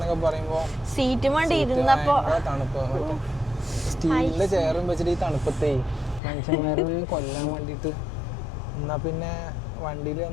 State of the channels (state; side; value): drops out; right; at 6.2 s